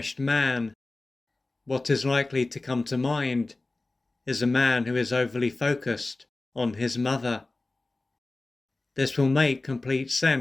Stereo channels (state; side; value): quieter; right; 3.1 dB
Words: man, what is likely to come to mind is a man who is overly focused on his mother. This will make complete